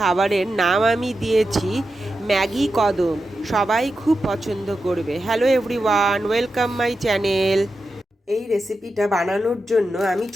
নাম আমি দিয়েছি ম্যাগি কদম। সবাই খুব পছন্দ করবে। Hello everyone, welcome my channel. এই রেসিপিটা বানানোর জন্য আমি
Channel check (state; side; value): normal; both; correlation 0.89